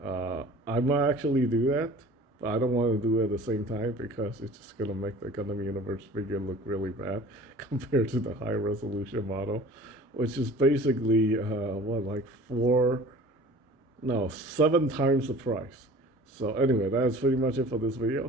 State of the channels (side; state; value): both; normal; correlation 0.45